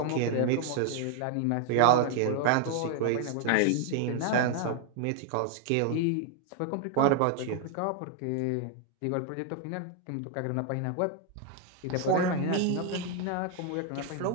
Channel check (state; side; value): different; both; correlation 0.00